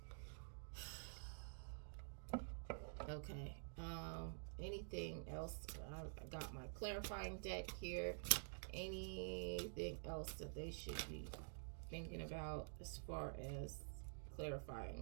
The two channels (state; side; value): silent; left; digital silence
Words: Okay. Anything else? I got my clarifying deck here. Anything else that they should be thinking about as far as clarifying